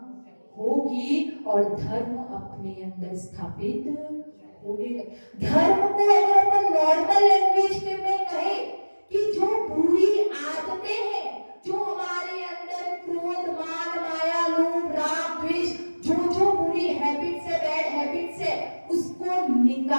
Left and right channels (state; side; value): inverted; both; correlation -1.00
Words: होगी और धर्म अपने अंदर स्थापित होने। धर्म को अगर अपन नॉर्मल लैंग्वेज में कहे कि जो बुरी आदतें हैं, जो हमारे अंदर क्रोध, मान, माया, लोभ, राग, द्वेष, जो बुरी हैबिट्स है, बैड हैबिट्स है, उसको